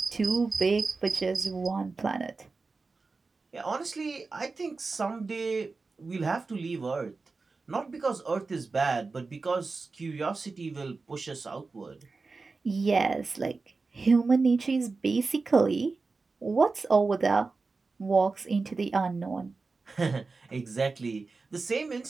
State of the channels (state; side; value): quieter; left; 4.0 dB